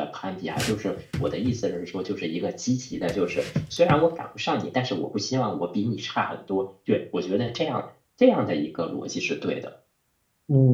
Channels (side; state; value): both; identical; correlation 1.00